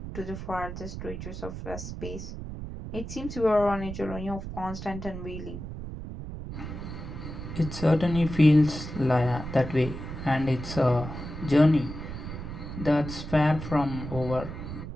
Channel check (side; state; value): right; noise; rumble, 8 dB below the sound